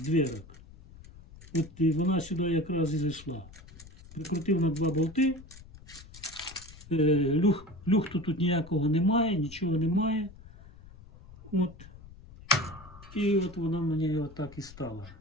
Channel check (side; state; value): left; noise; rumble, 19 dB below the sound